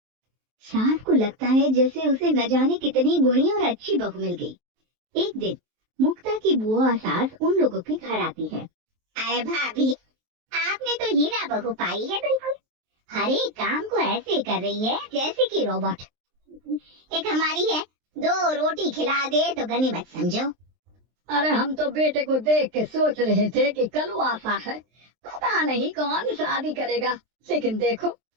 सास को लगता है जैसे उसे न जाने कितनी गुणी और अच्छी बहू मिल गई। एक दिन मुक्ता की बुआ सास उन लोगों के घर आती है। अरे भाभी, आपने तो हीरा बहू पाई है, बिल्कुल हर एक काम को ऐसे कर रही है जैसे कि रोबोट। एक हमारी है, 2 रोटी खिला दे तो गनीमत समझो। अरे हम तो बेटे को देख के सोच रहे थे कि कलुआसा है, पता नहीं कौन शादी करेगा, लेकिन देखो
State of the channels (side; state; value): left; late; 23 ms